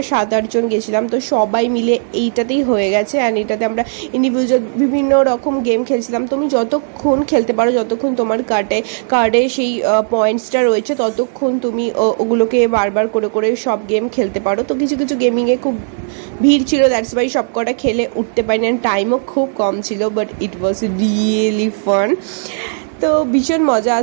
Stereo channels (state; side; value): silent; left; 63 dB below the other